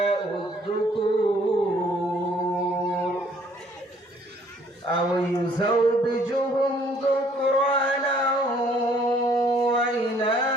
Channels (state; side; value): normal; both; correlation 0.61